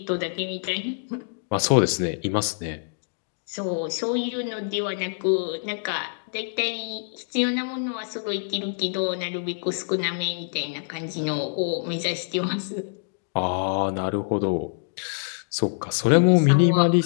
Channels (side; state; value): right; silent; digital silence